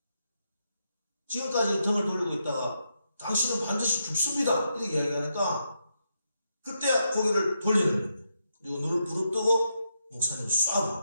지금까지 등을 돌리고 있다가 당신은 반드시 죽습니다. 이렇게 이야기하니까 그때 고개를 돌리는 거예요. 그리고 눈을 부릅뜨고 목사님을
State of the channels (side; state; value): both; inverted; correlation -0.82